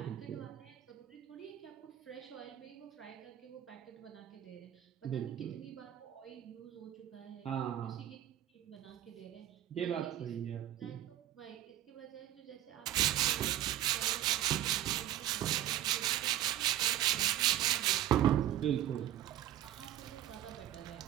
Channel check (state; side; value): quieter; left; 12.3 dB